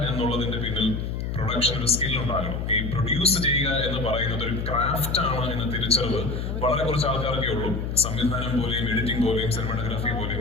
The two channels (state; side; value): noise; left; hum, 3 dB below the sound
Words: എന്നുള്ളതിന്റെ പിന്നിൽ പ്രൊഡക്ഷൻ ഒരു സ്കിൽ ഉണ്ടാകണം. ഈ പ്രൊഡ്യൂസ് ചെയ്യുക എന്ന് പറയുന്നത് ഒരു ക്രാഫ്റ്റ് ആണ് എന്ന തിരിച്ചറിവ് വളരെ കുറച്ച് ആൾക്കാർക്കേ ഉള്ളൂ. സംവിധാനം പോലെയും എഡിറ്റിംഗ് പോലെയും സിനിമാറ്റോഗ്രാഫി